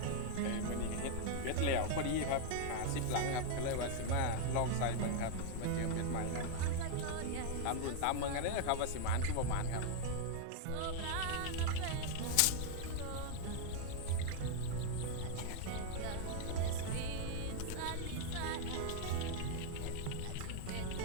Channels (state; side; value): different; both; correlation 0.00